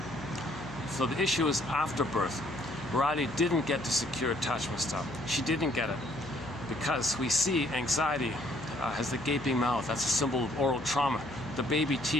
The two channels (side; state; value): left; noise; hum, 16 dB below the sound